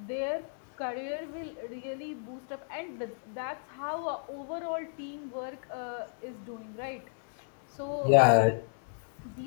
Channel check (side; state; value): right; silent; digital silence